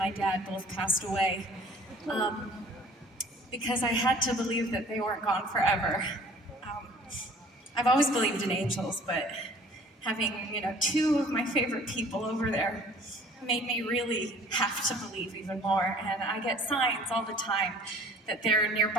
dad both passed away, because I had to believe that they weren't gone forever. I've always believed in angels, but having, two of my favorite people over there made me really have to believe even more. And I get signs all the time that they're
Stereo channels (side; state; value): both; normal; correlation 0.50